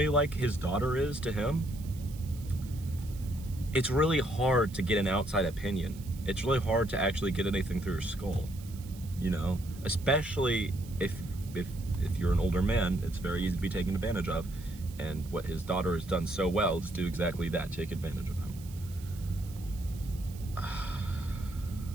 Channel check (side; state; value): right; noise; hiss, 20 dB below the sound